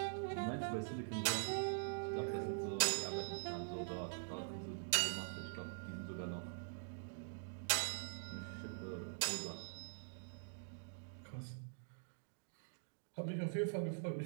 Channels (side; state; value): left; silent; digital silence